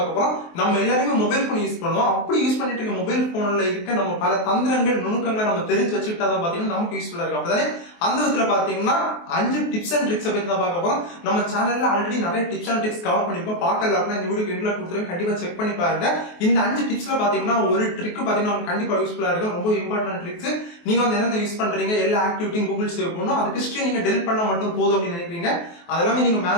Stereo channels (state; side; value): late; right; 23 ms